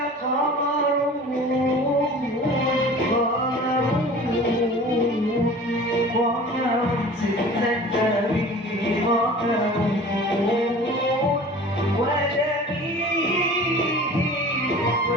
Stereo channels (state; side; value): normal; both; correlation 0.42